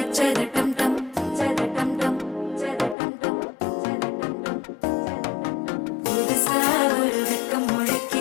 அச்சத டம் டம் டம் டம் புதுசா ஒரு வெக்கம்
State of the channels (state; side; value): drops out; right; at 3.0 s